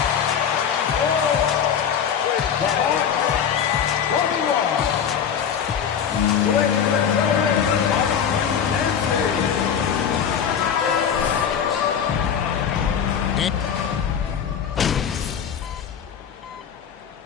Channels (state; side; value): quieter; right; 7.9 dB